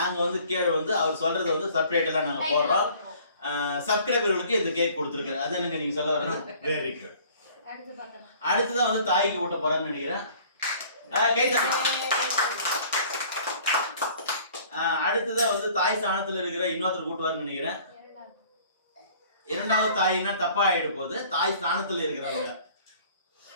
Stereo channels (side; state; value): both; inverted; correlation -0.52